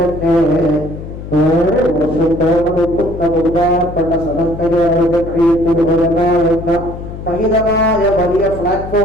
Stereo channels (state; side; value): noise; left; hum, 11 dB below the sound